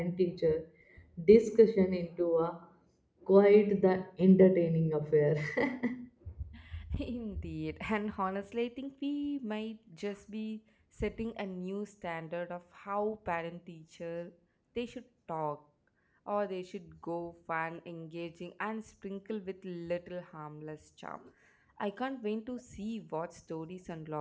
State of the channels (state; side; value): identical; both; correlation 1.00